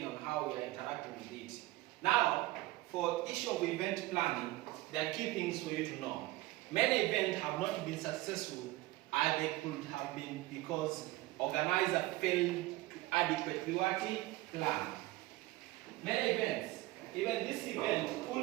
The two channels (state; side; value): quieter; left; 18.9 dB